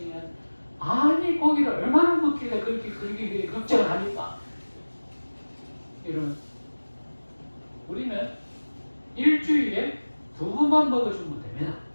아니 고기를 얼마나 먹길래 그렇게 걱정을 합니까? 이런 우리는 일주일에 2번만 먹어주면 됩니다.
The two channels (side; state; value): both; inverted; correlation -1.00